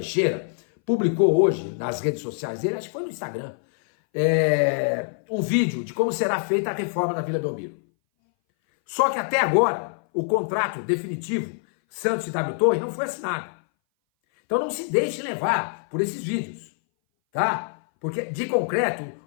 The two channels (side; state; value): right; silent; 59 dB below the other